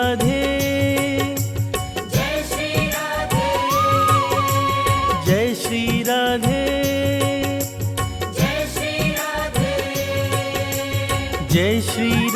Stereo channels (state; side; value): identical; both; correlation 1.00